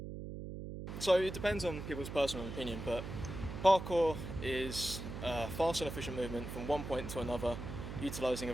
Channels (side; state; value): right; noise; hum, 8 dB below the sound